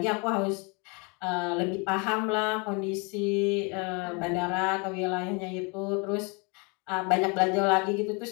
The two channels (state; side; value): quieter; right; 31.7 dB